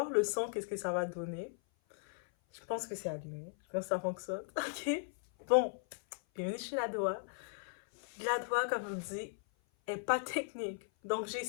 le son, qu'est-ce que ça va donner. Je pense que c'est allumé. Je pense que ça fonctionne. Ok? Bon, bienvenue chez la Doha. La Doha, comme je vous dis, est pas technique. Donc,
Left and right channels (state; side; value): silent; right; 53 dB below the other